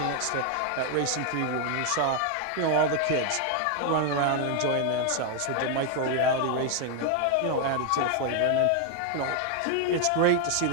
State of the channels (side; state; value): both; different; correlation 0.00